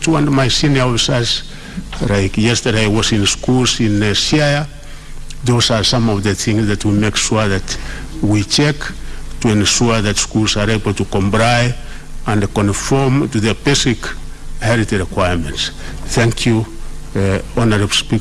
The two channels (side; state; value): both; identical; correlation 1.00